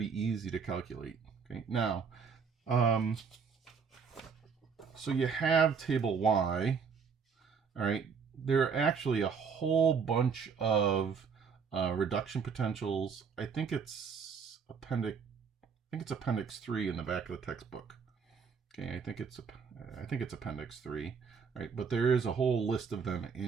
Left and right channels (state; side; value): quieter; left; 6.1 dB